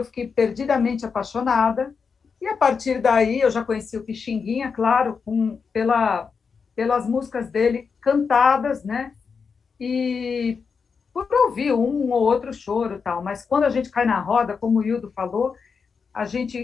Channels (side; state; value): right; quieter; 5.6 dB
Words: fiquei perdidamente apaixonada. E a partir daí eu já conheci o Pixinguinha, claro, pelas músicas dele cantadas, né? E por ouvir um ou outro choro e tal. Mas quando a gente cai na roda, como o Hildo falou, a